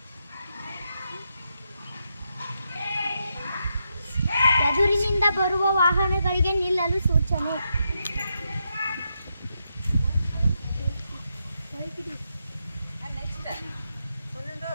ಎದುರಿನಿಂದ ಬರುವ ವಾಹನಗಳಿಗೆ ನಿಲ್ಲಲು ಸೂಚನೆ.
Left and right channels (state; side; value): inverted; both; correlation -0.83